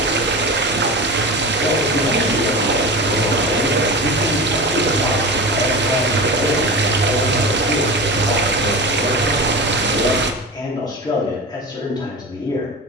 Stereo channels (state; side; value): normal; both; correlation 0.29